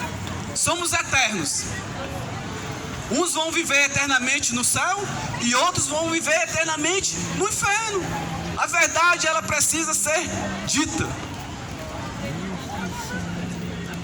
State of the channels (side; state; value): both; identical; correlation 1.00